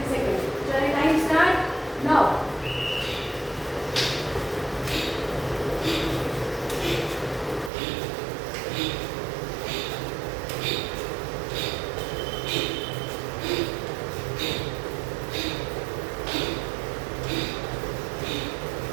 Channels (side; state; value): left; drops out; at 7.7 s